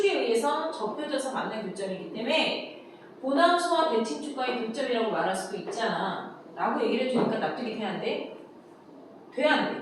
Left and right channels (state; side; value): identical; both; correlation 1.00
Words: 의해서 접혀져서 만난 교점이기 때문에 보남수와 대칭축과의 교점이라고 말할 수도 있잖아. 라고 얘기를 해주니까 납득이 돼야 안 돼? 돼 안